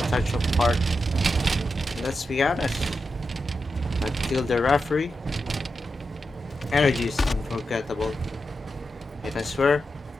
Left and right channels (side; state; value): both; normal; correlation 0.88